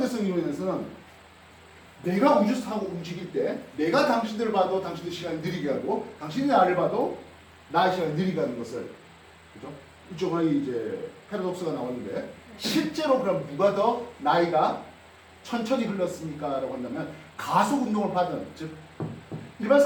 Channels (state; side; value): identical; both; correlation 1.00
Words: 이론에서는 내가 우주선 타고 움직일 때 내가 당신들을 봐도 당신들 시간이 느리게 하고 당신이 나를 봐도 나의 시간이 느리게 하는 것을, 그죠? 이쪽은 이제 패러독스가 나오는데 실제로 그럼 누가 더 나이가 천천히 흘렀습니까? 라고 한다면 가속 운동을 받은, 즉